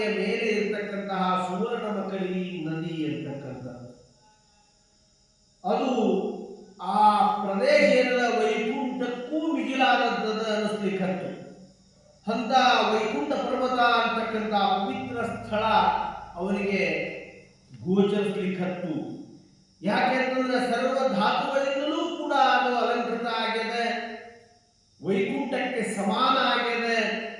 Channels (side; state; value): both; identical; correlation 1.00